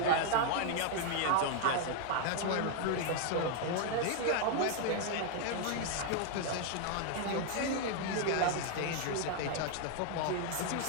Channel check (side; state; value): both; different; correlation 0.00